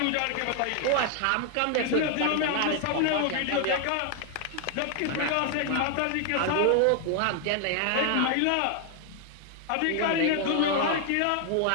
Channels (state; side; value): different; both; correlation 0.00